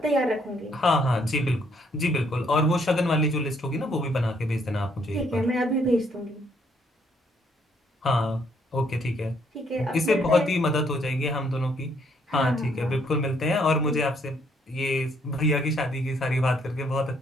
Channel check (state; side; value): normal; both; correlation 0.69